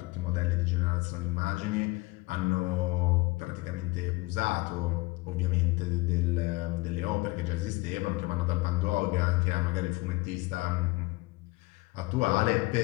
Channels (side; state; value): right; quieter; 22.9 dB